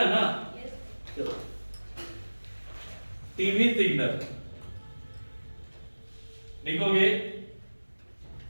ना, चलो टीवी सिग्नल लिखोगे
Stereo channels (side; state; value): both; inverted; correlation -1.00